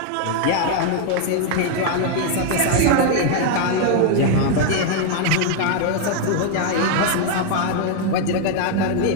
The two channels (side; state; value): both; different; correlation 0.00